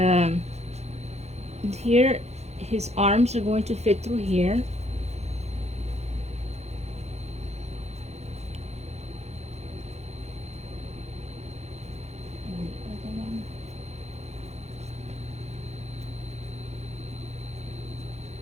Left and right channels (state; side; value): late; left; 0.31 ms